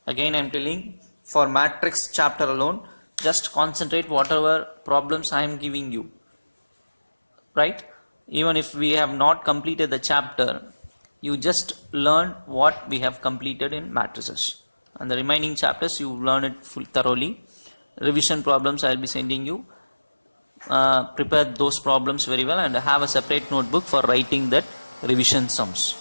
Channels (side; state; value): both; inverted; correlation -1.00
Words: Again I am telling, for matrix chapter alone, just concentrate whatever problems I am giving you. Right? Even if we have not completed the chapter, you just learn what we have completed in matrices. And the remaining chapters you learn it thoroughly. Revision problems I will be sending you. Prepare those problems very well and have a separate notebook for writing that revision sums.